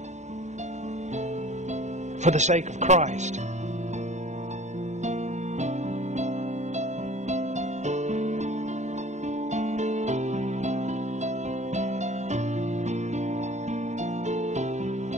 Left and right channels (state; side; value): late; left; 0.34 ms